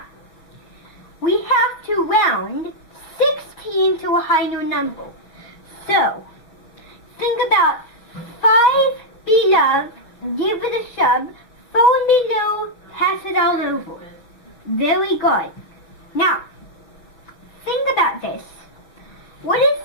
we have to round 16 to a higher number. So, think about 5 below, give it a shove, 4 below, pass it all over. Very good. Now, think about this. What is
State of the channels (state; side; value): late; right; 6.1 ms